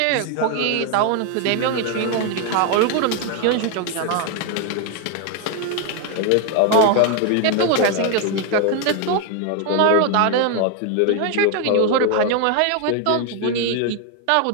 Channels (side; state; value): both; different; correlation 0.01